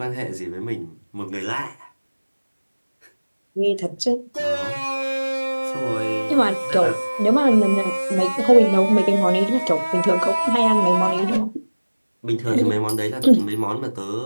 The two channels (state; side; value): inverted; both; correlation -1.00